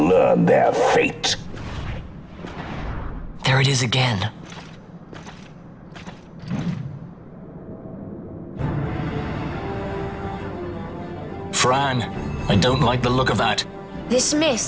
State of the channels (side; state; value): both; identical; correlation 1.00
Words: their fate. There it is again. Fran, I don't like the look of that. This